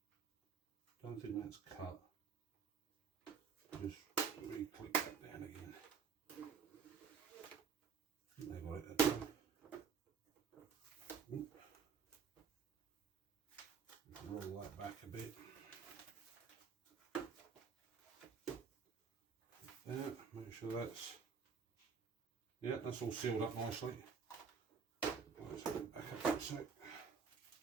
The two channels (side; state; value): left; quieter; 5.9 dB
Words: Don't think that's cut. Just re-click that down again. I think they got it that time. Roll that back a bit. There, make sure that's, yeah, that's all sealed up nicely. Let's back up a sec.